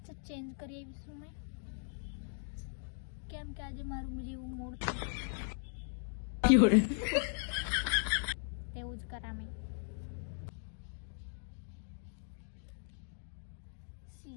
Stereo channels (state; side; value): silent; right; digital silence